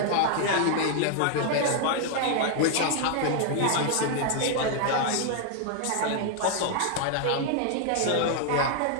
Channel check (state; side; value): different; both; correlation 0.00